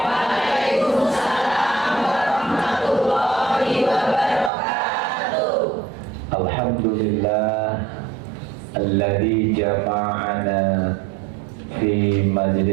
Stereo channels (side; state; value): left; drops out; at 4.5 s